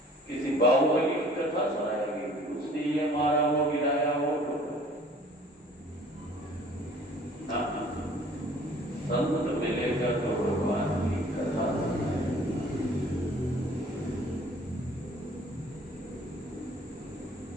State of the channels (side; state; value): both; normal; correlation 0.53